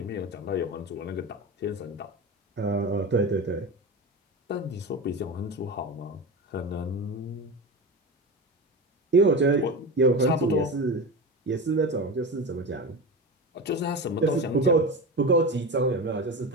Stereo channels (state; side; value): normal; both; correlation 0.25